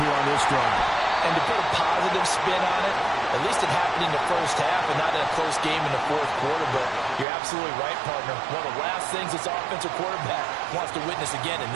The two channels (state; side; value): drops out; left; at 7.2 s